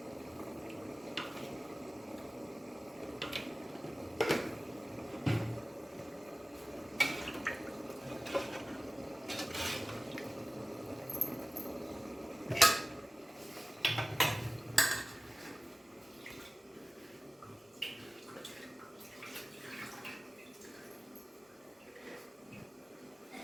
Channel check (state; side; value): normal; both; correlation 0.97